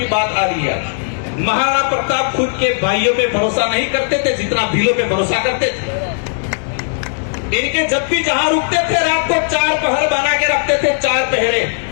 बात आ रही है। महाराणा प्रताप खुद के भाइयों पे भरोसा नहीं करते थे जितना भीलों पे भरोसा करते थे। इनके जब भी जहां रुकते थे रात को 4 पहर बना के रखते थे, 4 पहरे,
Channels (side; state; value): right; silent; digital silence